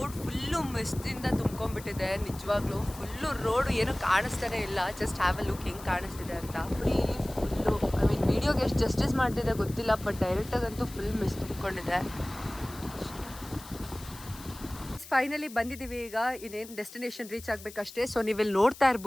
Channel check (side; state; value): left; noise; hiss, 17 dB below the sound